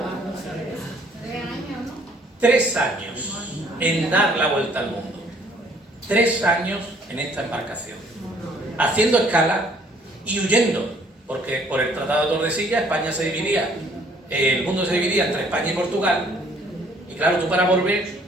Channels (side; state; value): both; normal; correlation 0.61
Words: 3 años en dar la vuelta al mundo. 3 años en esta embarcación. Haciendo escala y huyendo. Porque por el Tratado de Tordesillas España se dividía, el mundo se dividía entre España y Portugal. Y claro, tú para volver,